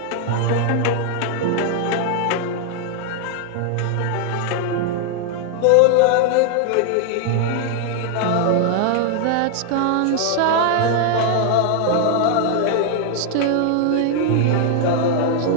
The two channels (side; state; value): both; different; correlation 0.00